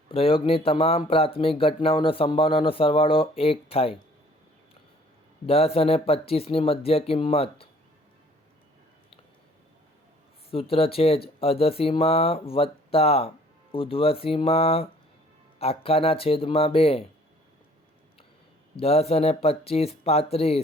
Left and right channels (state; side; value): normal; both; correlation 0.56